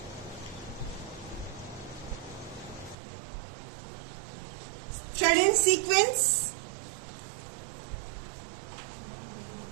थ्रेड एंड सीक्वेंस,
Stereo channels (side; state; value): left; drops out; at 3.0 s